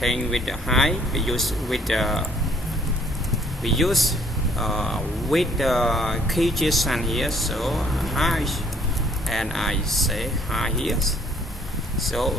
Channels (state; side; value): normal; both; correlation 0.61